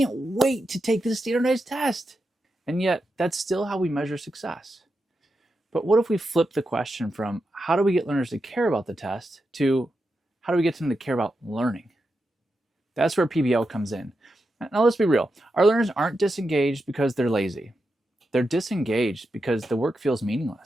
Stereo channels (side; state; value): both; normal; correlation 0.88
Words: wait to take this standardized test. And yet, that's still how we measure success. But what if we flip the question from how do we get learners to care about the test to how do we get them to care about learning? That's where PBL comes in. Now let's be real. Our learners aren't disengaged because they're lazy. They're disengaged because the work feels